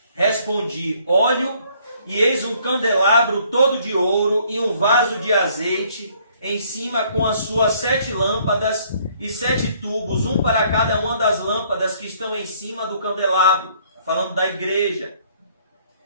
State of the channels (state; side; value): inverted; both; correlation -0.63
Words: Respondi: olho, e eis um candelabro todo de ouro e um vaso de azeite em cima com as suas 7 lâmpadas e 7 tubos, um para cada uma das lâmpadas que estão em cima do candelabro. Falando da igreja.